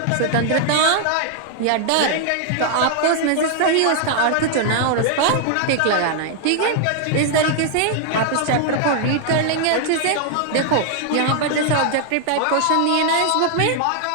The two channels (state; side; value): different; both; correlation 0.00